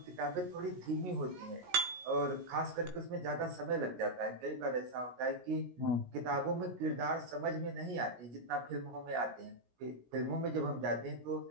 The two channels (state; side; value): late; left; 17 ms